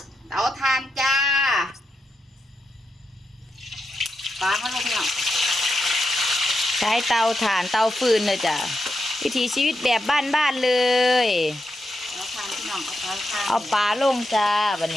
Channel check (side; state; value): both; normal; correlation 0.86